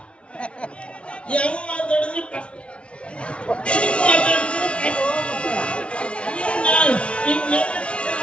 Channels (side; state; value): right; late; 0.060 ms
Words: ಯಾವ ಮಾತಾಡಿದ್ರು ಕಷ್ಟ.